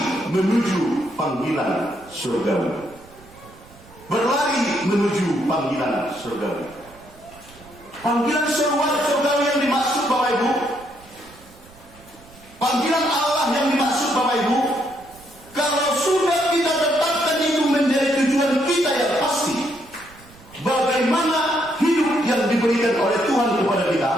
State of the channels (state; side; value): noise; right; rumble, 24 dB below the sound